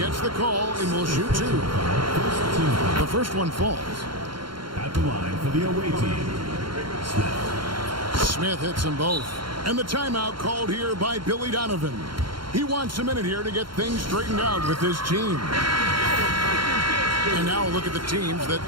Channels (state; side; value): late; left; 0.73 ms